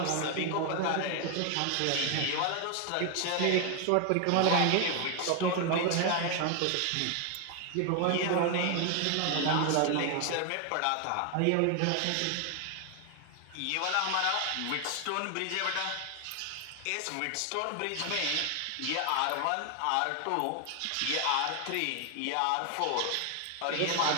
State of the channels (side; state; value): both; different; correlation 0.01